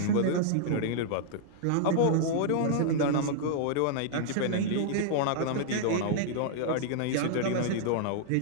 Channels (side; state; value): both; different; correlation -0.01